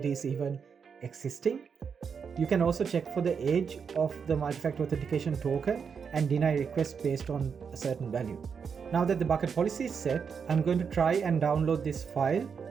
is even existing. You can also check for the age of the multi-factor authentication token and deny requests based on a certain value. Now that the bucket policy is set, I'm going to try and download this file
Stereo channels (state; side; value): quieter; left; 6.3 dB